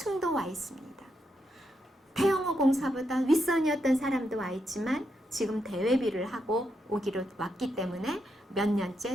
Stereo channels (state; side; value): normal; both; correlation 0.82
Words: 와 있습니다. 태영호 공사보다 윗선이었던 사람도 와 있지만 지금 대외비를 하고 오기로 왔기 때문에 몇